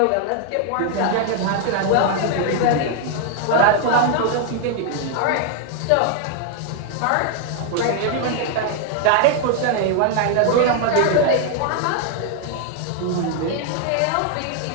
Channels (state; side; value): different; both; correlation 0.00